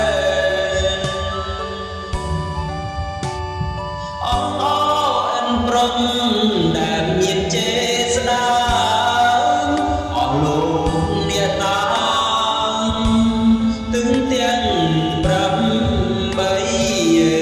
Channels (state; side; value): identical; both; correlation 1.00